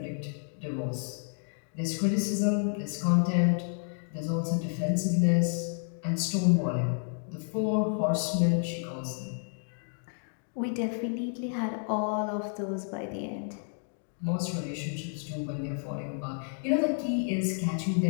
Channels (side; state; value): right; silent; 58 dB below the other